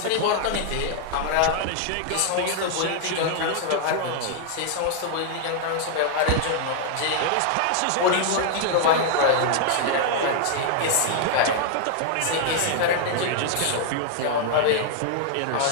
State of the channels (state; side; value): different; both; correlation 0.00